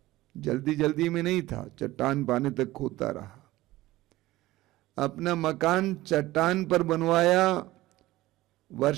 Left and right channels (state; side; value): quieter; left; 17.3 dB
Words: जल्दी जल्दी में नहीं था, चट्टान पाने तक खोदता रहा। अपना मकान चट्टान पर बनवाया,